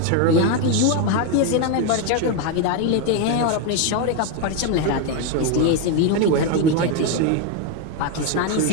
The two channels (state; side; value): different; both; correlation 0.02